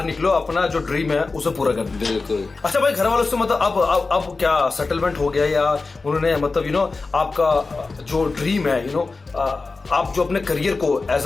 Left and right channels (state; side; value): quieter; right; 3.9 dB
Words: निकलो, अपना जो ड्रीम है उसे पूरा कर। बिल्कुल। अच्छा भाई, घर वालों से मतलब अब क्या सेटलमेंट हो गया, या उन्होंने मतलब आपका जो ड्रीम है आप जो अपने करियर को